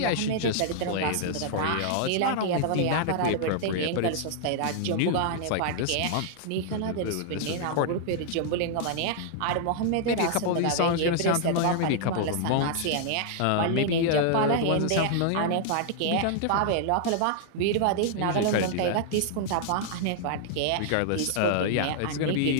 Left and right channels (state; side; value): different; both; correlation -0.01